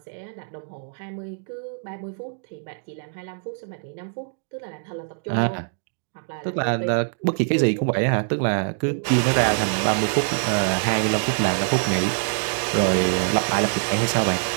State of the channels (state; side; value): silent; left; digital silence